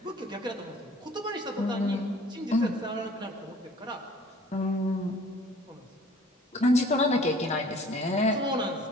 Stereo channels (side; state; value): both; normal; correlation 0.51